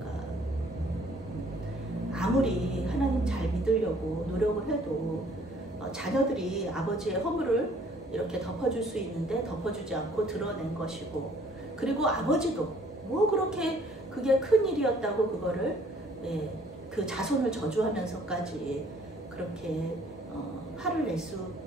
아무리 하나님 잘 믿으려고 노력을 해도 자녀들이 아버지의 허물을 이렇게 덮어줄 수 있는데 덮어주지 않고 드러낸 것이고 그리고 아버지도 뭐 그렇게 그게 큰 일이었다고 그거를 그 자손을 저주하면서까지 그렇게 화를 낼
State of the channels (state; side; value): normal; both; correlation 0.59